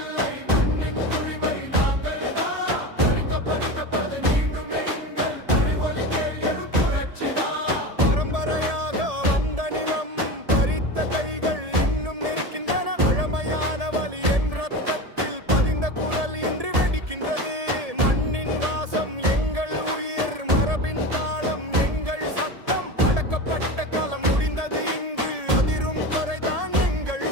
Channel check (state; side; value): late; left; 1.7 ms